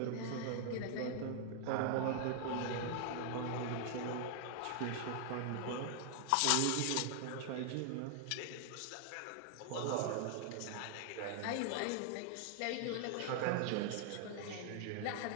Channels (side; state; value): both; different; correlation 0.00